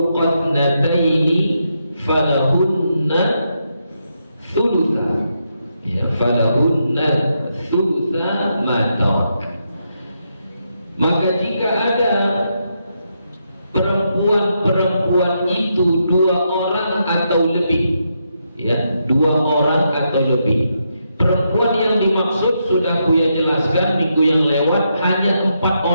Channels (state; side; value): inverted; both; correlation -0.81